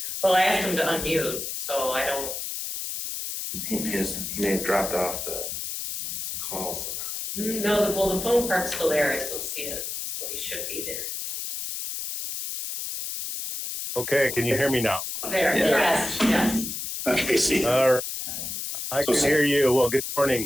Well, I asked him to unmute, so I don't, He may have dropped off the call somehow. no, the phone part's still there, I still see it, so he should be there. Okay, can you hear me now? There, Yeah. yes. Okay, see. All right. I can hear you. Well, good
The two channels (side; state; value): left; noise; hiss, 5 dB below the sound